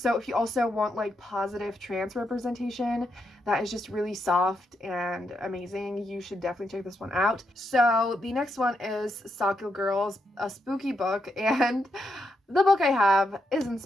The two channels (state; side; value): normal; both; correlation 0.81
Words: if you also want like positive trans representation that is just really soft and amazing, you should definitely check this one out. So the next one is Sakyo Girls, a spooky book, and the book I have isn't